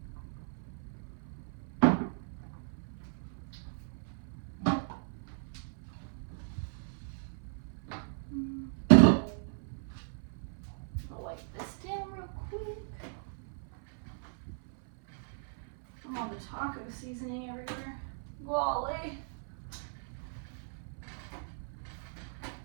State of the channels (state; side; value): silent; left; 54 dB below the other